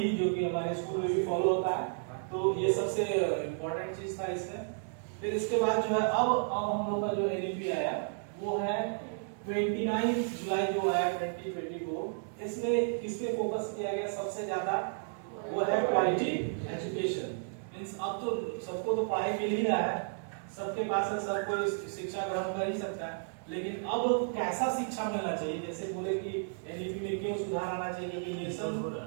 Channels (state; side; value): silent; left; digital silence